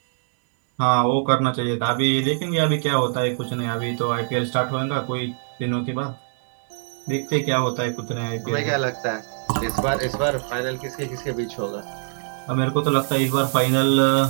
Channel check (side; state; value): left; silent; digital silence